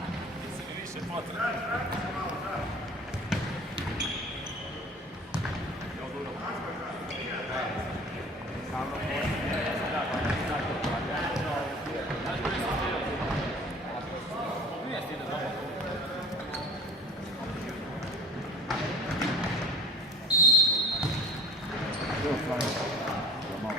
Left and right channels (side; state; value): both; normal; correlation 0.44